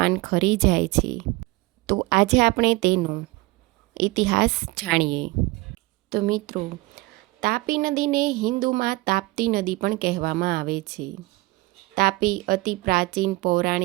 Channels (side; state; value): left; quieter; 22.0 dB